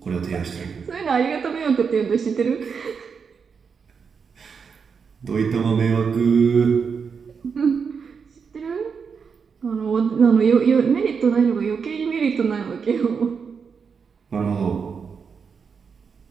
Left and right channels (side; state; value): left; quieter; 6.0 dB